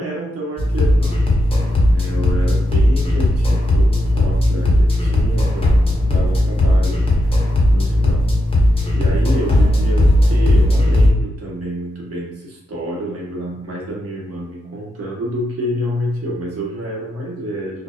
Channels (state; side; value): normal; both; correlation 0.86